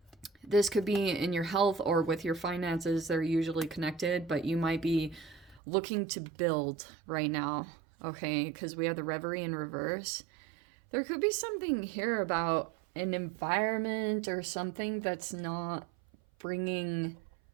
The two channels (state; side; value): drops out; left; at 5.6 s